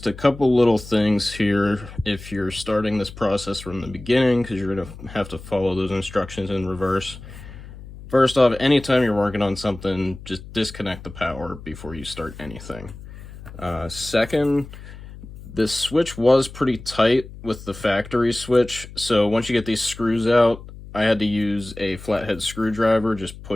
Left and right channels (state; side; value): noise; left; hum, 15 dB below the sound